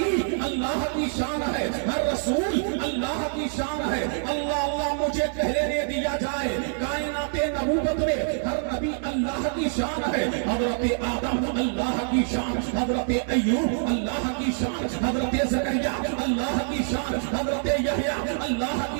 اللہ کی شان ہے، ہر رسول اللہ کی شان ہے۔ اللہ اللہ مجھے کہہ لینے دیا جائے کائنات نبوت میں ہر نبی اللہ کی شان ہے۔ حضرت آدم اللہ کی شان، حضرت ایوب اللہ کی شان، حضرت زکریا اللہ کی شان، حضرت یحییٰ اللہ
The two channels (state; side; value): silent; left; 61 dB below the other